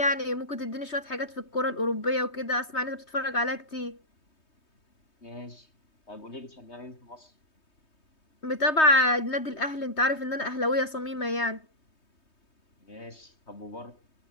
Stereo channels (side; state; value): right; late; 3.2 ms